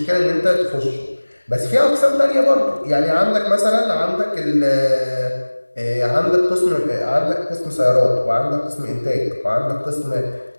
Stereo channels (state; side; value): inverted; both; correlation -1.00